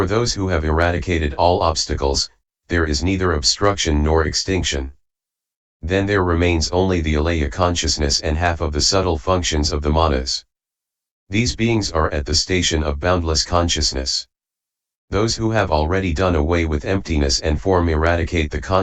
those who have eradicated all obstacles, there is neither obstruction nor extinction. Then there remains only the alaya consciousness and half of the subtle functions of the manas. These beings are at the station of boundless consciousness. Those who have already done away with emptiness and form eradicate the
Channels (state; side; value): identical; both; correlation 1.00